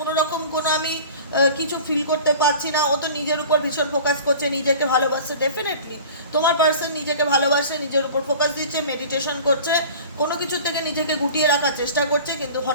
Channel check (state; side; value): inverted; both; correlation -0.40